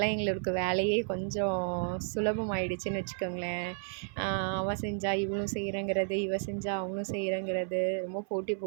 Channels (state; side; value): silent; left; 56 dB below the other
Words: எங்களுக்கு வேலையே கொஞ்சம் சுலபமாயிடுச்சுன்னு வச்சுக்கோங்களேன். அவள் செஞ்சால் இவளும் செய்கிறேங்கிறது, இவள் செஞ்சால் அவங்களும் செய்கிறேங்கிறது, ரொம்ப போட்டி